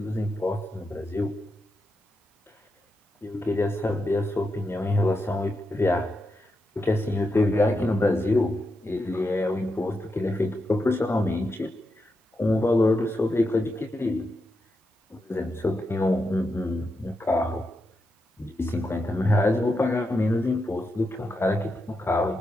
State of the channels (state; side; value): normal; both; correlation 0.86